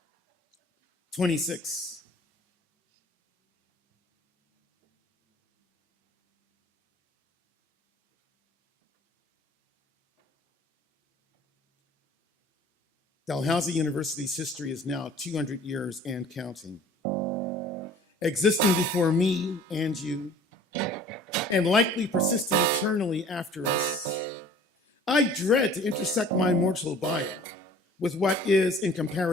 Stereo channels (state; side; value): normal; both; correlation 0.49